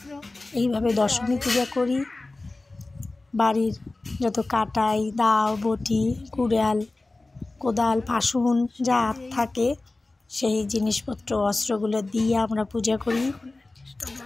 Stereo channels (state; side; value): quieter; right; 3.1 dB